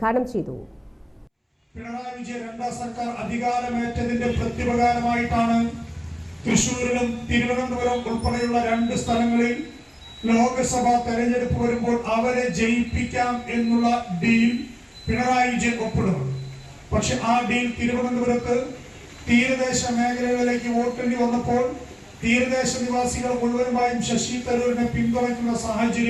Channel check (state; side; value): identical; both; correlation 1.00